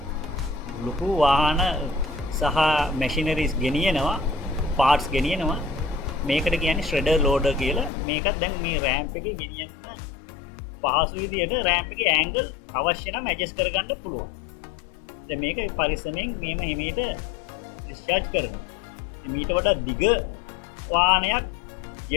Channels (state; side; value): drops out; right; at 7.9 s